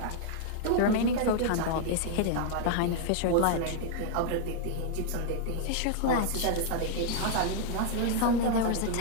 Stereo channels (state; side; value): different; both; correlation 0.00